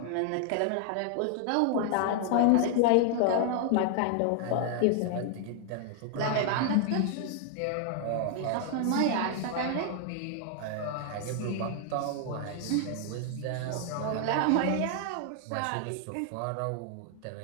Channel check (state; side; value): different; both; correlation 0.00